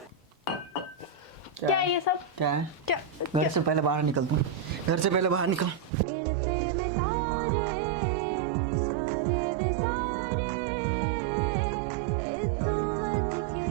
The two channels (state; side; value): drops out; left; at 5.9 s